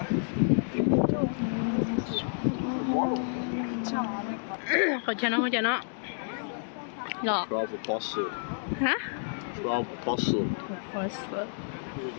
không cho nó Là. 12 apostles. Hả? 12 apostles.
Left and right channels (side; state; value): right; silent; digital silence